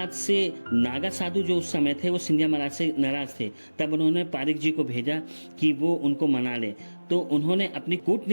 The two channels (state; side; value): inverted; both; correlation -1.00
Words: से नागा साधु जो उस समय थे वो सिंधिया महाराज से नाराज थे। तब उन्होंने पारिक जी को भेजा कि वो उनको मना ले। तो उन्होंने अपनी